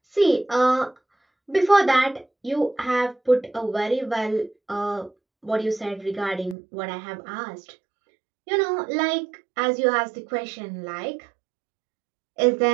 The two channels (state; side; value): drops out; left; at 6.6 s